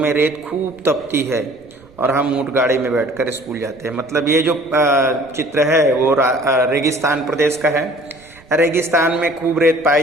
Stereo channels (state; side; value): noise; right; rumble, 27 dB below the sound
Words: रेत खूब तपती है और हम ऊँट गाड़ी में बैठकर स्कूल जाते हैं। मतलब ये जो चित्र है वो रेगिस्तान प्रदेश का है। रेगिस्तान में खूब रेत पाई